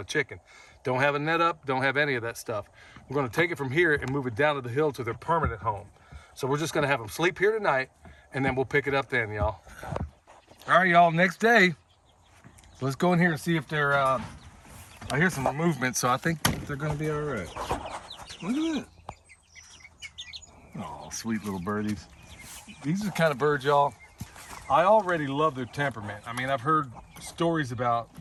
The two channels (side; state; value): both; identical; correlation 1.00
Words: a chicken. Don't have a net up, don't have any of that stuff. We're going to take it from here and move it down to the hill to their permanent home. So we're just going to have them sleep here tonight, and then we'll pick it up then, y'all. All right, y'all, next day. So let's go in here and see if they're, I hear some movement, so I think they're going to be all right. Look at that. Oh, sweet little birdies. These are the kind of birds, y'all, I already love their temperament. I mean, I've heard stories about